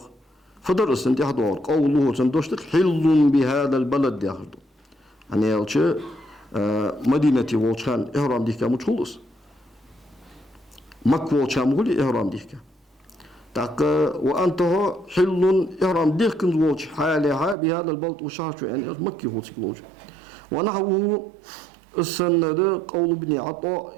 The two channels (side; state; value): left; drops out; at 17.6 s